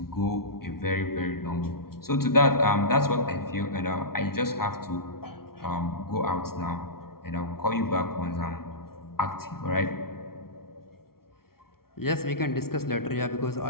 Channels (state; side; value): late; right; 0.94 ms